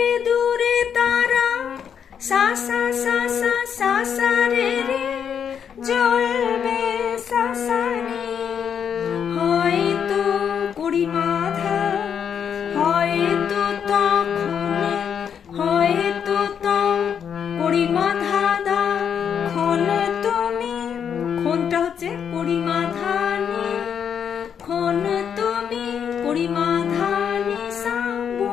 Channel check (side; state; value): right; quieter; 7.8 dB